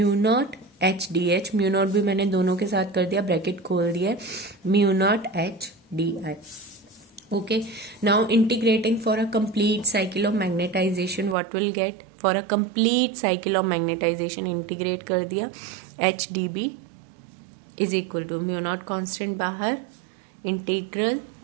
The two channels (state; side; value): drops out; left; at 11.4 s